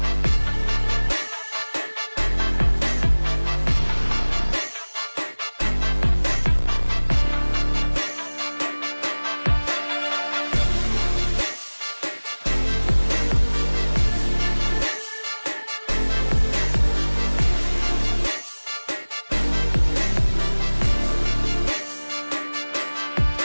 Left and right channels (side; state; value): both; inverted; correlation -1.00